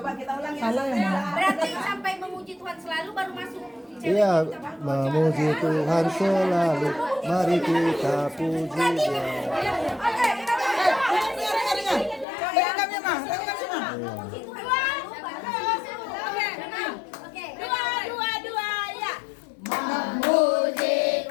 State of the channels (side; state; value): right; drops out; at 12.2 s